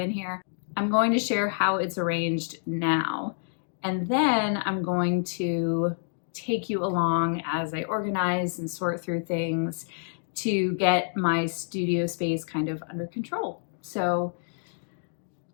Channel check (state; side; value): silent; right; digital silence